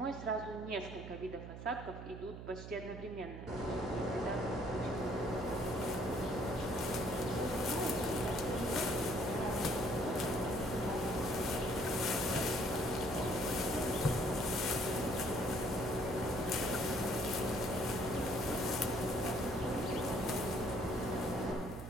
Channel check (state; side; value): noise; right; hum, 10 dB below the sound